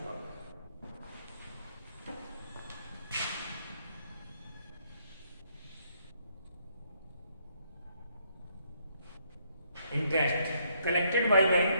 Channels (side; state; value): both; inverted; correlation -0.72